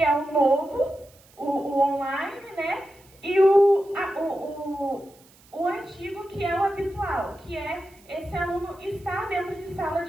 é o novo, o online, né? E o antigo, que é o habitual, que é esse aluno estar dentro de sala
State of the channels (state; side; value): noise; right; hiss, 28 dB below the sound